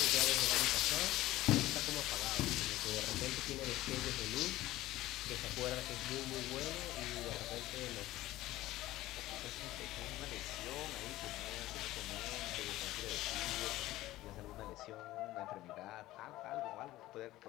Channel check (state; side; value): quieter; right; 16.4 dB